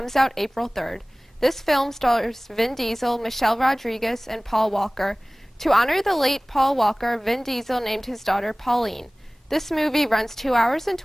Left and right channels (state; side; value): normal; both; correlation 0.98